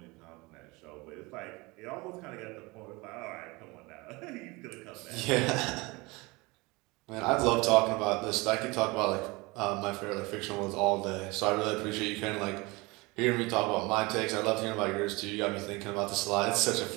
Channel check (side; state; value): left; quieter; 24.4 dB